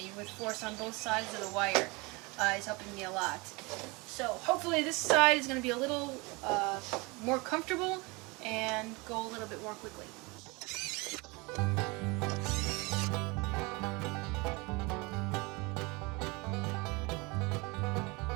with force on both sides of the wire is helping me a lot. So hopefully this side is going to be a little more comfortable and go a little bit more quickly.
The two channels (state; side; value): quieter; left; 26.4 dB